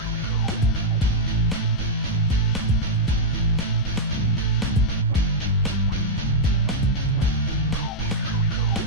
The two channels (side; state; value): both; normal; correlation -0.06